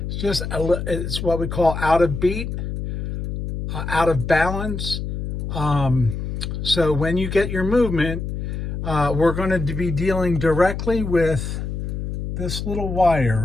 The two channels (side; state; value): left; noise; hum, 4 dB below the sound